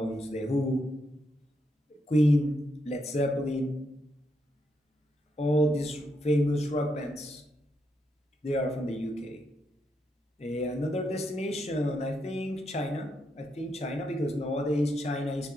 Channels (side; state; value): both; normal; correlation 0.81